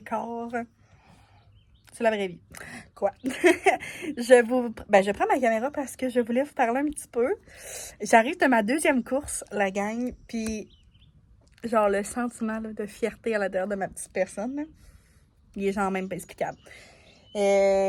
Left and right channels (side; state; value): both; identical; correlation 1.00